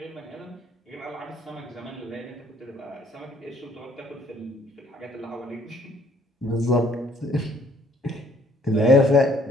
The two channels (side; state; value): both; normal; correlation 0.62